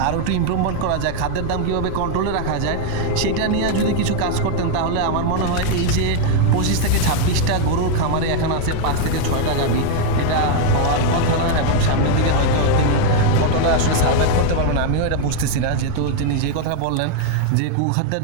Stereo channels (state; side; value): different; both; correlation 0.00